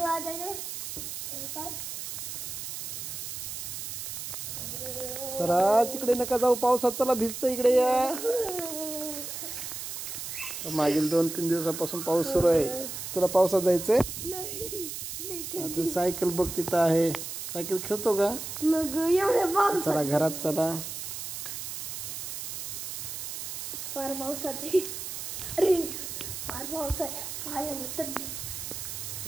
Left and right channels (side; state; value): right; noise; hiss, 6 dB below the sound